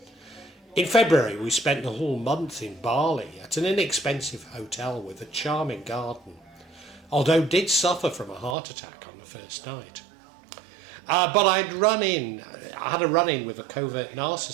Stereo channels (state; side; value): drops out; left; at 8.6 s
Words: In February we spent the whole month in Bali at an inexpensive hotel with a charming garden, although did suffer from a heart attack on the first night. But I had a run-in with a covert